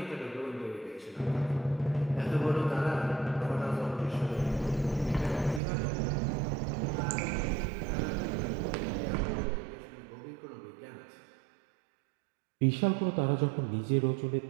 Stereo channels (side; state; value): left; drops out; at 5.6 s